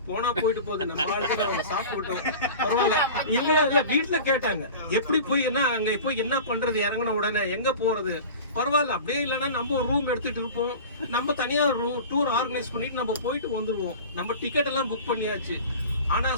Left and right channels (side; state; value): both; inverted; correlation -0.37